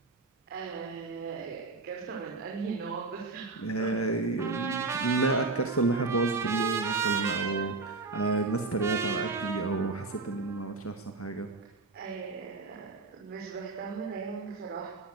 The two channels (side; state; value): left; quieter; 3.7 dB